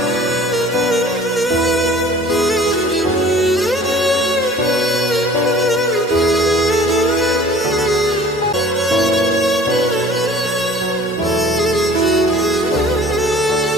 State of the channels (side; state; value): both; normal; correlation 0.48